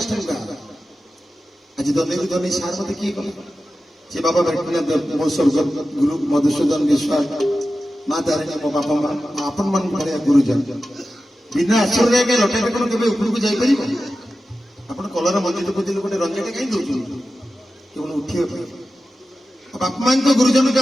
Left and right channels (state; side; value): normal; both; correlation 0.93